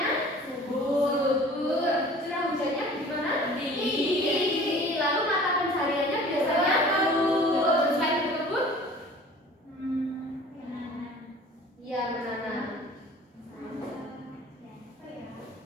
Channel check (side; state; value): both; normal; correlation 0.46